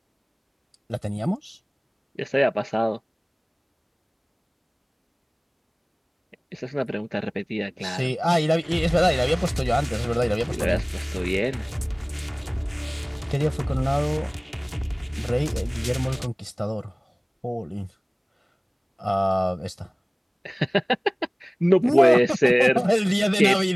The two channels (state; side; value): identical; both; correlation 1.00